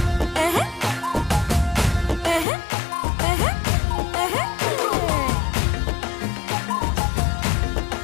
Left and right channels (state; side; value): drops out; right; at 2.5 s